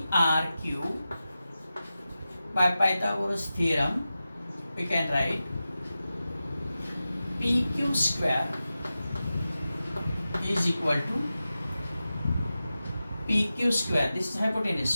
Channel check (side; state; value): both; inverted; correlation -0.93